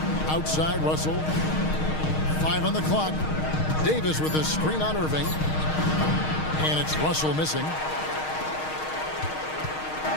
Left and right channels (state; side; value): late; right; 6.4 ms